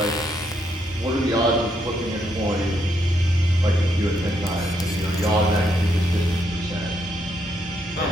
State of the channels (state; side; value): normal; both; correlation 0.76